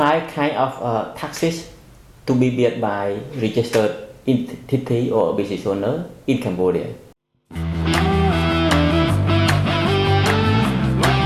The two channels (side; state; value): both; identical; correlation 1.00